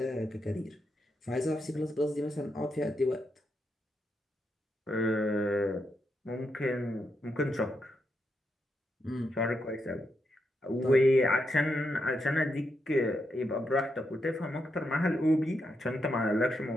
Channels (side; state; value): both; normal; correlation 0.83